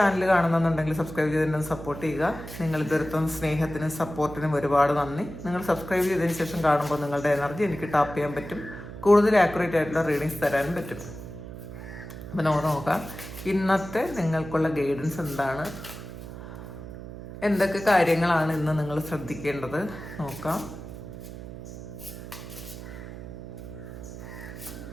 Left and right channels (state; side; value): noise; right; hum, 11 dB below the sound